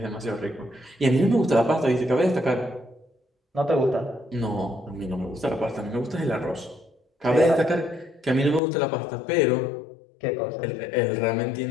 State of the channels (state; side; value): drops out; right; at 8.6 s